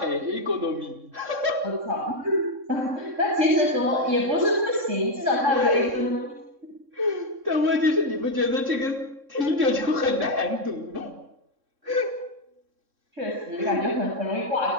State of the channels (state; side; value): late; left; 3.6 ms